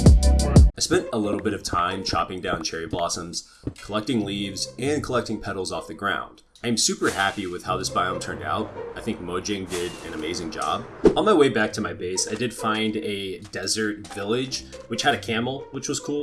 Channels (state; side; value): identical; both; correlation 1.00